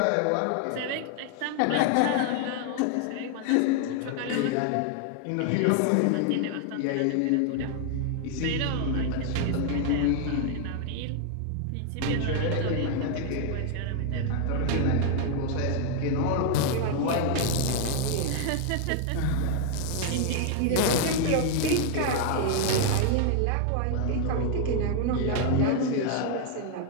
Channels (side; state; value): both; different; correlation 0.00